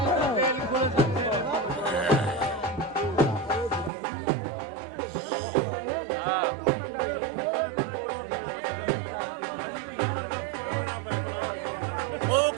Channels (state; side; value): drops out; left; at 3.9 s